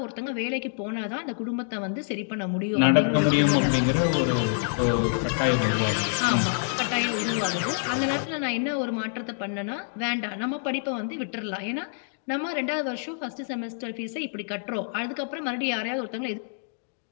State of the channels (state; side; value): silent; right; digital silence